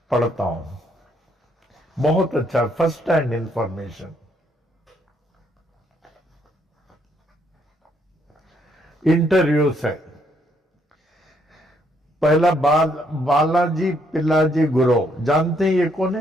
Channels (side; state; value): both; normal; correlation 0.71